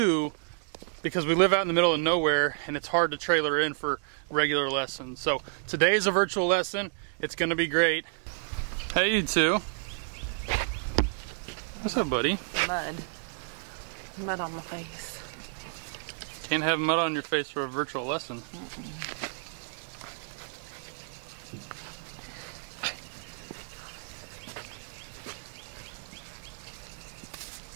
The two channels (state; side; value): silent; left; digital silence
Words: because we live out in the middle of nowhere and it's hard to trailer in for regular lessons. So today is a virtual lesson. It's gonna be great. Hey, you two. What's up, buddy? Mud. Mud on my face. Can't have mud on your face for a virtual lesson.